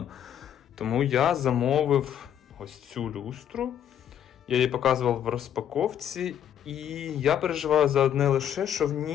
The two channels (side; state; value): right; quieter; 9.8 dB